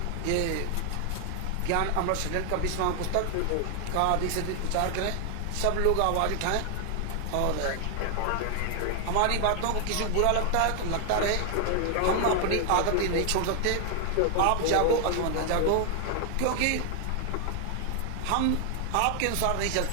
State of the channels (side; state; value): both; different; correlation 0.00